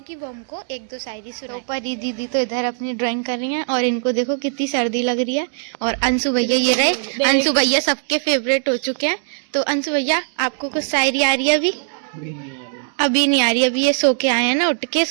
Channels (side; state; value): left; silent; digital silence